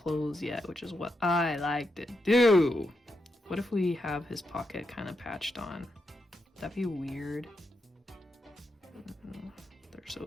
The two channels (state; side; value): normal; both; correlation 0.84